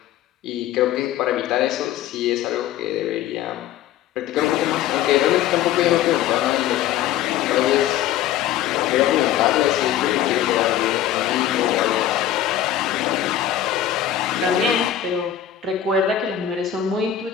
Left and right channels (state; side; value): quieter; right; 11.1 dB